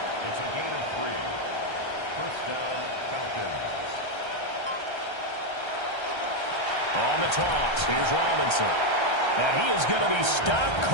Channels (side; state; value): right; late; 1.3 ms